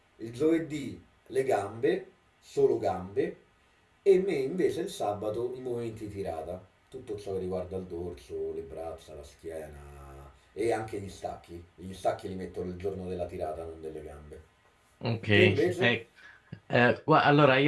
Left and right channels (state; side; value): identical; both; correlation 1.00